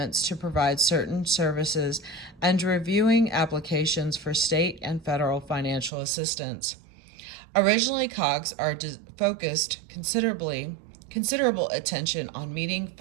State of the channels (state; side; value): drops out; left; at 5.9 s